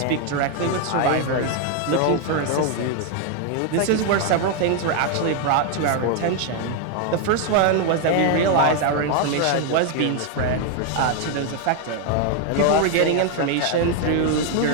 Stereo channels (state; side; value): different; both; correlation 0.00